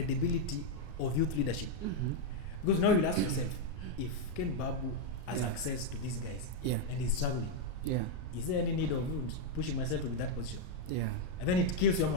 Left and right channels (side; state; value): right; late; 33 ms